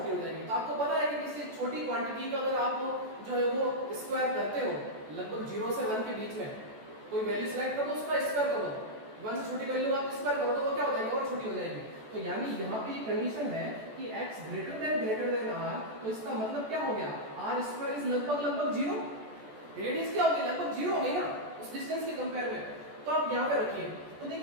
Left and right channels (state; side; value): late; left; 14 ms